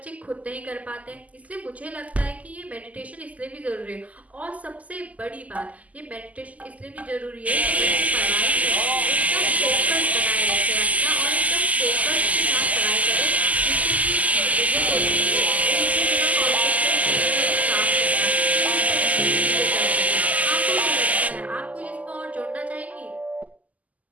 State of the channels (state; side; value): late; left; 0.074 ms